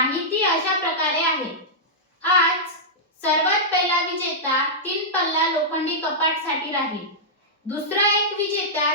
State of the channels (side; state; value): both; normal; correlation -0.10